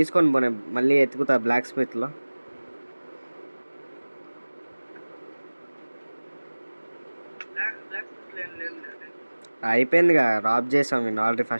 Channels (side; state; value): both; inverted; correlation -1.00